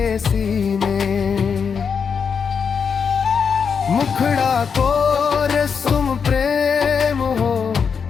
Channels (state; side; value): quieter; right; 6.3 dB